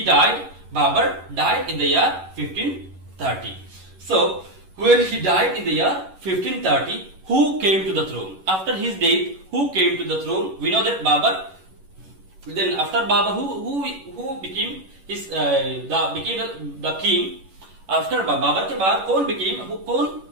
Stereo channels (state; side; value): late; left; 11 ms